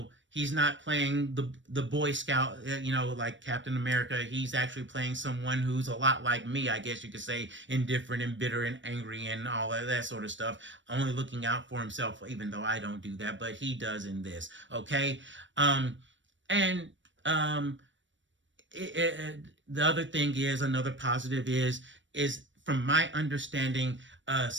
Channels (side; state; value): left; late; 0.55 ms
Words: he's not playing the Boy Scout, like Captain America. He's actually playing someone who's a lot like me, I guess you could say, indifferent and bitter and angry and all of that sort of stuff. Only looking out for himself, even though I don't do that, but he does in this. Okay, and um, the other thing is, another positive is from my understanding,